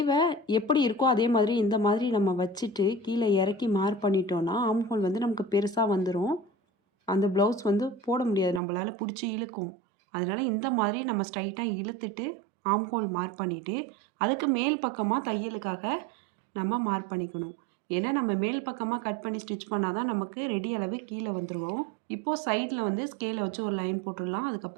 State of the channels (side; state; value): left; drops out; at 8.6 s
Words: எப்படி இருக்கோ அதே மாதிரி இந்த மாதிரி நம்ம வச்சுட்டு கீழே இறக்கி மார்க் பண்ணிட்டோன்னா ஆம்ஹோல் வந்து நமக்கு பெருசாக வந்துடும். அந்த ப்ளவுஸ் வந்து போட முடியாது, நம்மளால் பிடிச்சி இழுக்கும். அதனால் இந்த மாதிரி நம்ம ஸ்ட்ரைட்டாக இழுத்துட்டு ஆம்ஹோல் மார்க் பண்ணிவிட்டு அதுக்கு மேல் பக்கமாக தையலுக்காக நம்ம மார்க் பண்ணிக்கணும். ஏன்னா நம்ம மேல் பக்கமாக கட் பண்ணி ஸ்டிச் பண்ணால் தான் நமக்கு ரெடி அளவு கீழே வந்துடுவோம். இப்போது சைடில் வந்து ஸ்கேலை வச்சு ஒரு லைன் போட்டுடலாம்.